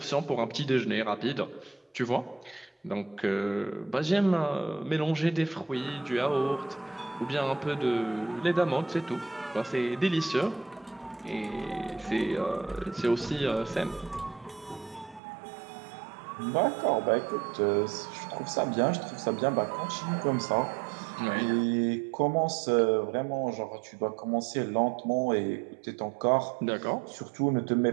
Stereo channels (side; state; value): left; drops out; at 15.2 s